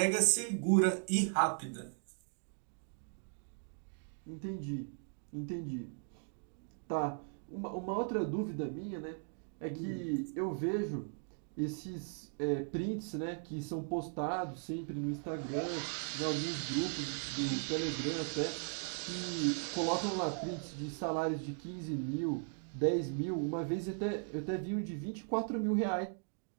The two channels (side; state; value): left; silent; 53 dB below the other